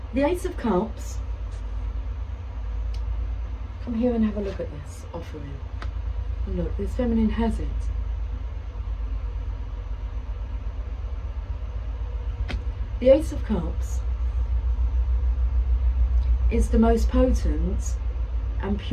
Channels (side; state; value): both; identical; correlation 1.00